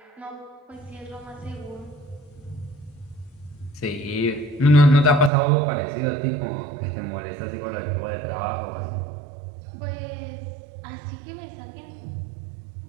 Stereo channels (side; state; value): left; drops out; at 5.3 s